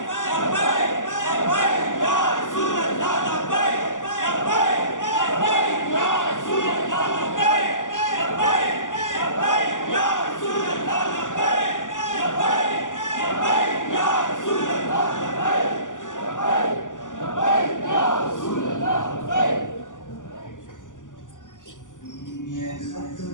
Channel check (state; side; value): late; right; 0.87 ms